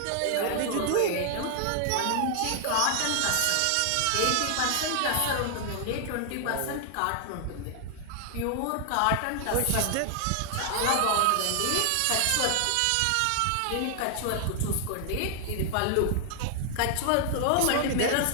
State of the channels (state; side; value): different; both; correlation 0.00